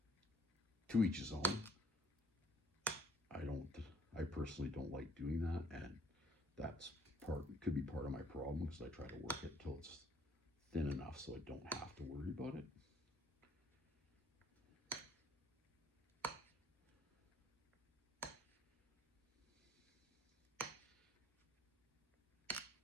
To each his own. I personally don't like doing that, and that's could be part of my problem, because I try to work it till it's thin enough so I don't have to worry about it.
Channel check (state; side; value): normal; both; correlation 0.60